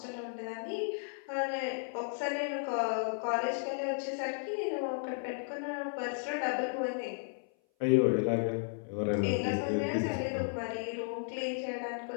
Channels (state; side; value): silent; right; 55 dB below the other